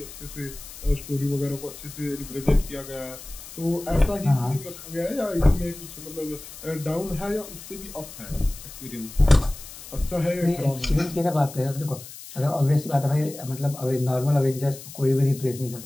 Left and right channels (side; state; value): left; noise; hiss, 15 dB below the sound